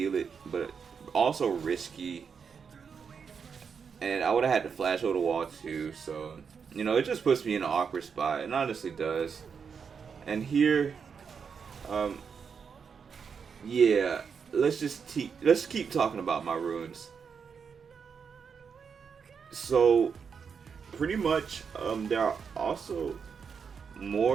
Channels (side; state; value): left; quieter; 6.3 dB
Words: it, but also risky. And I would have had to flash over the wall too, so you know, it just puts me in an awkward spot. It honestly does. And here, yeah, let's keep talking about my runes. So pretty much, there are also